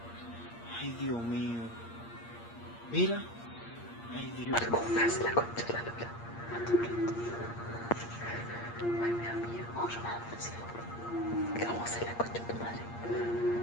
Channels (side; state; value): right; late; 8.6 ms